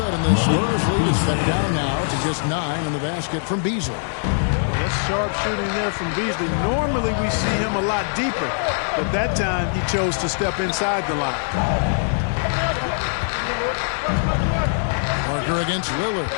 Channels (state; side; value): silent; right; digital silence